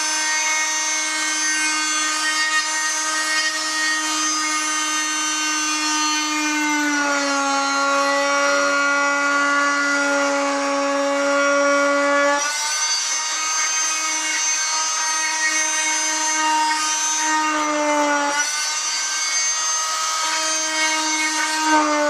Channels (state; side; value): identical; both; correlation 1.00